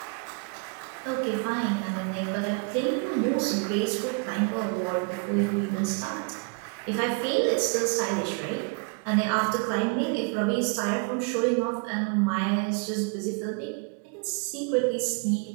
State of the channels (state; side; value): quieter; left; 34.1 dB